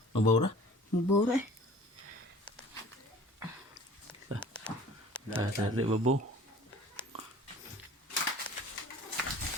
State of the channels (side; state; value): both; normal; correlation 0.47